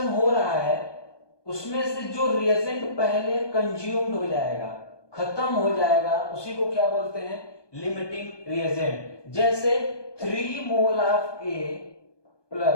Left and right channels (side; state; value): right; late; 1.2 ms